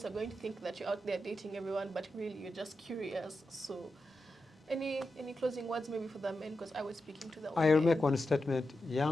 are going to think that you're out there dating everyone, but really you're just curious. So any closing words maybe for the men, because I was speaking to the I'll make one statement.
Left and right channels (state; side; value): normal; both; correlation 0.89